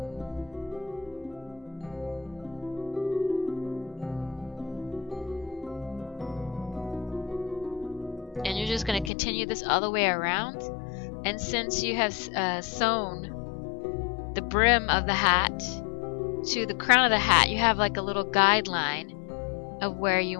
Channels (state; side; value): drops out; right; at 9.1 s